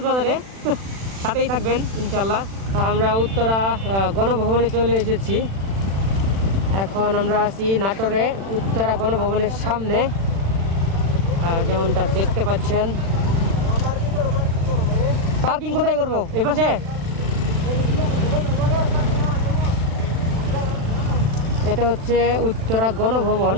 সাথেই থাকবেন ইনশাল্লাহ। আমরা উত্তরা গণভবনে চলে এসেছি। এখন আমরা আছি নাটোরে উত্তরা গণভবনের সামনে, যেমনটা দেখতে পাচ্ছেন। পার্কিং কোথায় করবো? এই পাশে? এটা হচ্ছে উত্তরা গণভবন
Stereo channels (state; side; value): late; left; 36 ms